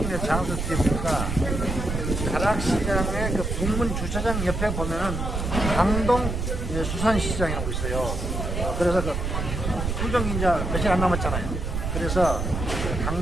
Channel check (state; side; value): noise; right; rumble, 3 dB below the sound